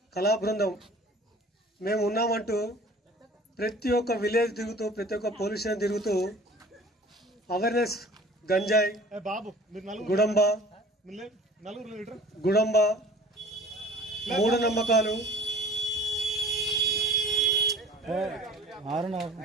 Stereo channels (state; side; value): normal; both; correlation 0.47